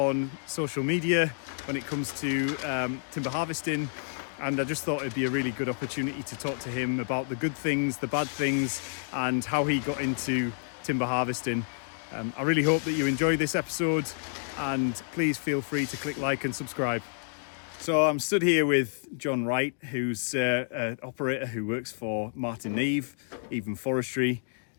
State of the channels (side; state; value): right; silent; digital silence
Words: social media when it comes to timber harvesting. And I just thought it'd be a really good opportunity to talk to him about the good things, the bad things, and how he got into timber harvesting. I really hope that you enjoy this episode, and please feel free to click like and subscribe. So I'm stood here with John Wright, who's an operator who works for Martin Neve, Even Forestry.